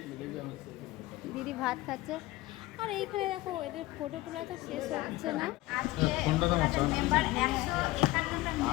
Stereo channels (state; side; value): quieter; right; 19.0 dB